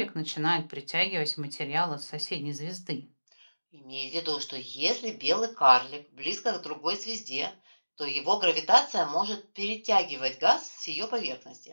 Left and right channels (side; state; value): both; inverted; correlation -1.00